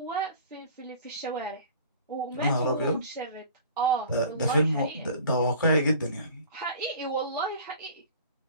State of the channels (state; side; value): inverted; both; correlation -0.44